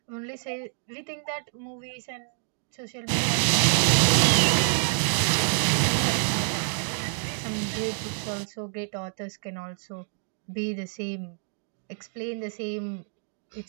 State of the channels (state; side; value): silent; left; digital silence